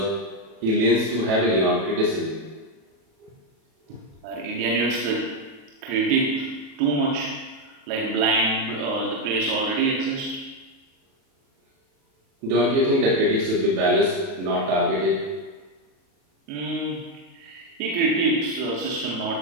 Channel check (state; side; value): late; left; 37 ms